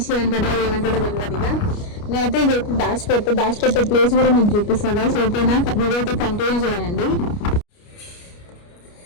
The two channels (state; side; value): late; right; 29 ms